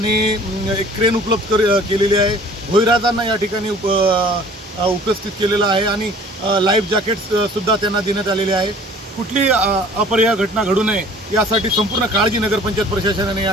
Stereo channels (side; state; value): both; normal; correlation 0.50